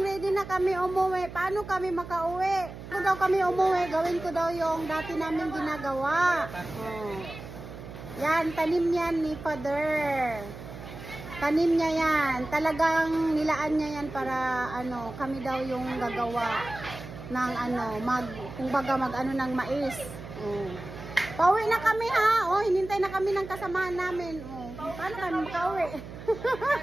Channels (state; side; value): noise; right; hum, 13 dB below the sound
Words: na kami umuwi. Paano kami makauwi? Kung daw kami umuwi, gawin ko daw yung dati namin ginagawa. Oh. Yan, tanim yan ni Father. Tanim niya yan. Talagang nilaan niya yan para kami daw yung gagawa ng kumbaga ng mais. Oh. Pauwi na kami ha. Oh, hinintay na kami ng kasamahan namin. Oh, paano kami makauwi?